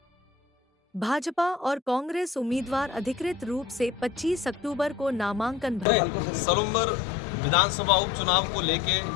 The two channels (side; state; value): right; drops out; at 5.9 s